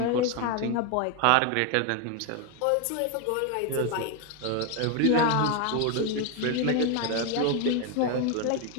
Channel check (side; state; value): both; different; correlation 0.01